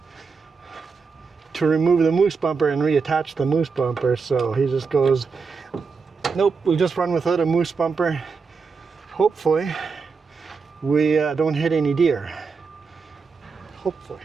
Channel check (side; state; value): left; quieter; 5.0 dB